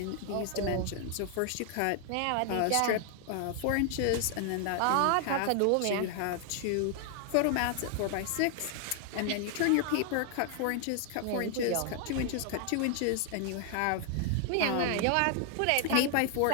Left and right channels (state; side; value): different; both; correlation 0.00